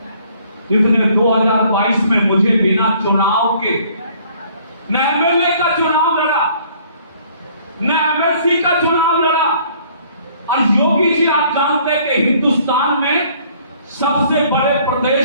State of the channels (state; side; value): inverted; both; correlation -0.59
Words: जिसने 2022 में मुझे बिना चुनाव के न एमएलए का चुनाव लड़ा, न एमएलसी का चुनाव लड़ा। और योगी जी, आप जानते हैं कि हिंदुस्तान में सबसे बड़े